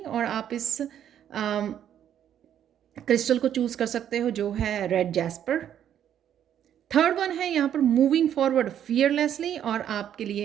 और आप इस क्रिस्टल को चूज कर सकते हो जो है रेड जैस्पर। थर्ड वन है यहाँ पर मूविंग फॉरवर्ड फियरलेसली, और आपके लिए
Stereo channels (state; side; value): quieter; left; 10.0 dB